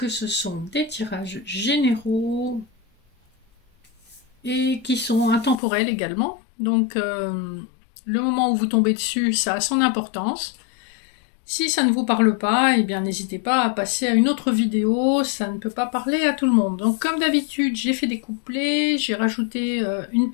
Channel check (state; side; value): drops out; right; at 5.6 s